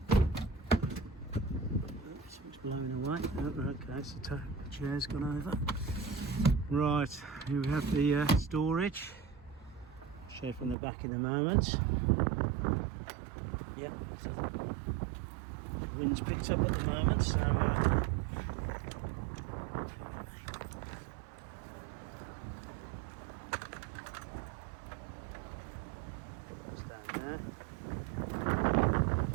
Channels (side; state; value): left; drops out; at 10.8 s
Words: Oops, it's blowing away. Oh, okay, so the chair's gone over. Right, here we have the storage. I'll show you from the back in a moment. Yep, so the wind's picked up at the moment, so that's down there.